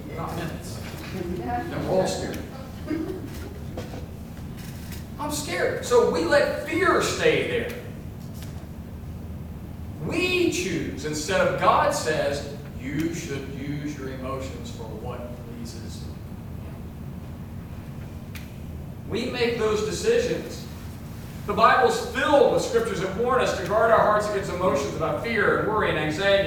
Not minutes. And we're all scared. I'm scared. So we let fear stay there. We choose instead of God says, you should use your emotions for what pleases Him. We make those decisions. The Bible's filled with scriptures that warn us to guard our hearts against emotions about fear and worry and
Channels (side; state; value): both; identical; correlation 1.00